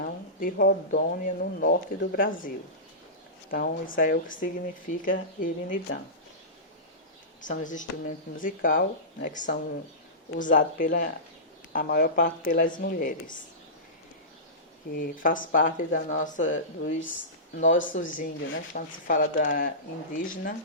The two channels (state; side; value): normal; both; correlation -0.20